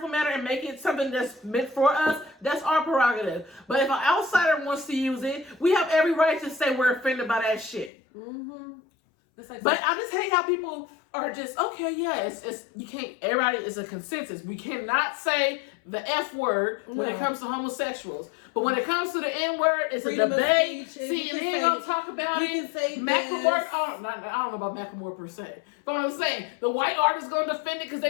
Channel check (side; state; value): right; drops out; at 7.9 s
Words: manner and make it something that's meant for us, that's our prerogative. But if an outsider wants to use it, we have every right to say we're offended by that shit. But I just hate how people are just, okay, yeah, it's you can't, everybody is a consensus. We cannot say the F word when it comes to homosexuals. But when it comes to the N word, it's freedom a debate. CNN gonna talk about it. Macklemore, I don't know about Macklemore per se. But I'm saying, the white artist gonna defend it because